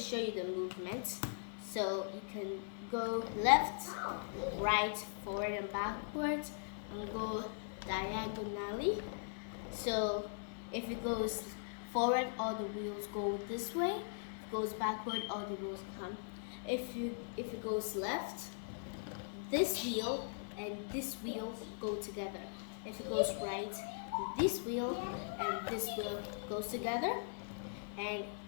you the movement. So you can go left, right, forward and backwards, and go diagonally. So if it goes forward, all the wheels go this way. If it goes backward, all the wheels come. If it goes left, this wheel and this wheel go together. If it goes right, this wheel and this wheel goes together. And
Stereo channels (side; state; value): right; silent; digital silence